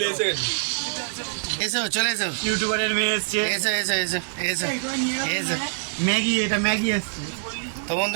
এসো চলে এসো, ইউটিউবারের মেয়ে এসছে। এসো এসো এসো এসো এসো। ম্যাগি, এটা ম্যাগি এসছে। তো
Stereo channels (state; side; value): silent; left; digital silence